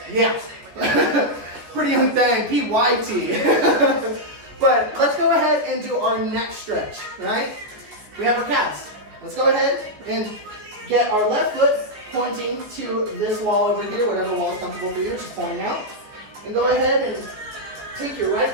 yeah. Pretty Young Thing, PYT. But let's go ahead and do our neck stretch, right? We have our calves. Let's go ahead and get our left foot pointing to this wall over here, whatever wall is comfortable for you, just pointing out. And go ahead and take your right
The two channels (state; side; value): late; left; 14 ms